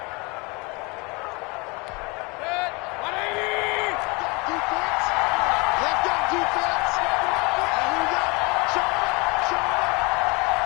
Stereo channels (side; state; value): right; quieter; 28.1 dB